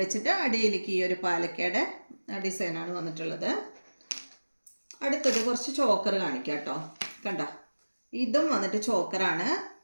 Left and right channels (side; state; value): both; inverted; correlation -1.00